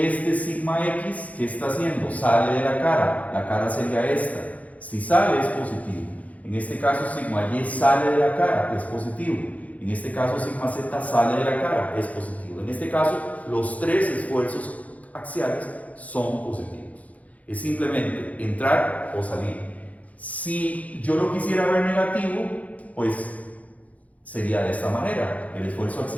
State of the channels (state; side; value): late; right; 0.070 ms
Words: sigma X, ¿qué está haciendo? Sale de la cara sería esta. Si sale es positivo. En este caso sigma Y sale de la cara, es positivo. En este caso sigma Z sale de la cara, es positivo. En este caso los tres esfuerzos axiales son positivos. Es simplemente entrar o salir. Si yo lo quisiera ver negativo, pues sería de esta manera. El esfuerzo